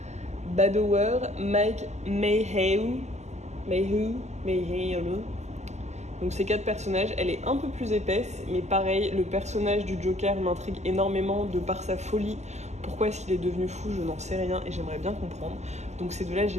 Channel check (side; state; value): left; late; 0.33 ms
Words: Badower, Mike Mayhew. Donc ces 4 personnages, elle est un peu plus épaisse, mais pareil, le personnage du Joker m'intrigue énormément de par sa folie. Pourquoi est-ce qu'il est devenu fou, je n'en sais rien, et j'aimerais bien comprendre. Donc ces 2-là,